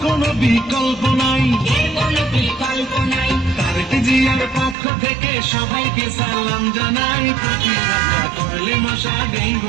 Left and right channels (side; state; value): left; drops out; at 4.8 s